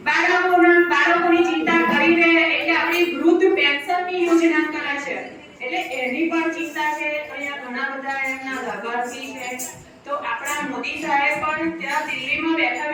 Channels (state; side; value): identical; both; correlation 1.00